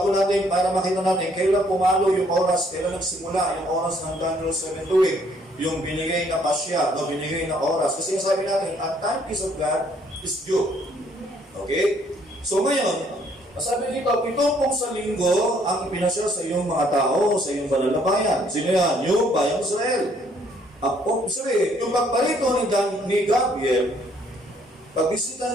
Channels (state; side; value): normal; both; correlation 0.65